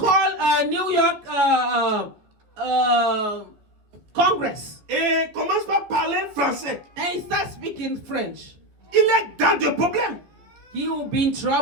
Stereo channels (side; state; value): left; late; 14 ms